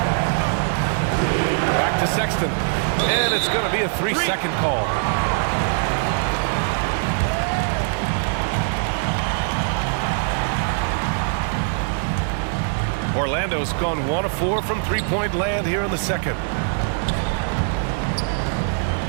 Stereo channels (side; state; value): left; silent; 64 dB below the other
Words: Back to Sexton. And it's going to be a 3-second call. Orlando's gone 1 of 4 from three-point land here in the second.